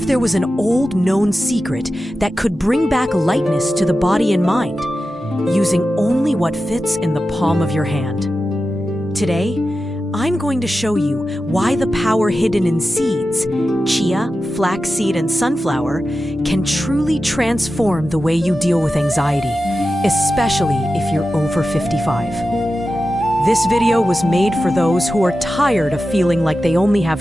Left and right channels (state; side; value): normal; both; correlation 0.92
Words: there was an old known secret that could bring back lightness to the body and mind, using only what fits in the palm of your hand? Today, I'm going to show you why the power hidden in seeds, chia, flaxseed, and sunflower, can truly transform the way you deal with anxiety, especially if you're over 55. This video was made for those who are tired of feeling like they only